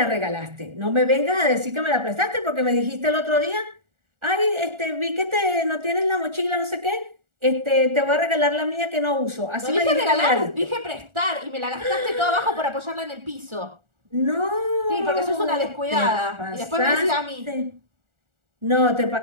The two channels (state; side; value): late; left; 1.4 ms